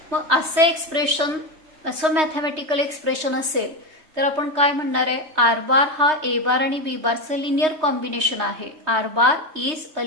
मग असं एक्सप्रेशन असं मॅथमॅटिकल एक्सप्रेशन असेल तर आपण काय म्हणणार आहे आर बार हा ए बार आणि बी बारचं लिनियर कॉम्बिनेशन आहे. R bar is a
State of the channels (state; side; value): late; left; 3.2 ms